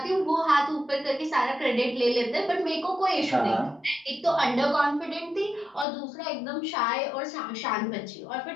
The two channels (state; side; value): drops out; right; at 5.9 s